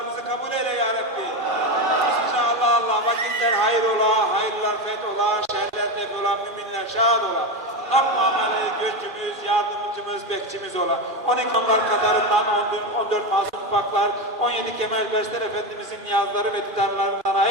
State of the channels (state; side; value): late; left; 2.5 ms